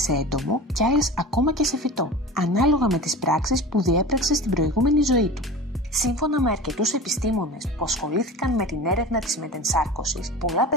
σε έντομο και άλλες ακόμα και σε φυτό, ανάλογα με τις πράξεις που διέπραξε στην προηγούμενη ζωή του. Σύμφωνα με αρκετούς επιστήμονες που ασχολήθηκαν με την έρευνα της μετενσάρκωσης, πολλά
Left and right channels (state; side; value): normal; both; correlation 0.33